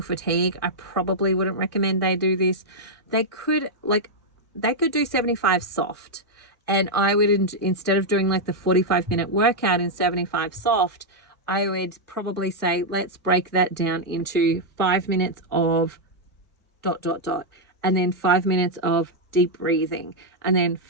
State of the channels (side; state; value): both; normal; correlation -0.03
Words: fatigue. I probably wouldn't recommend they do this. They could do 75 soft. And I would, instead of doing like the 45-minute workout in 75 soft, I would probably say, let's break that down into 5 minutes of ... and then 5 minutes of deep breathing, and then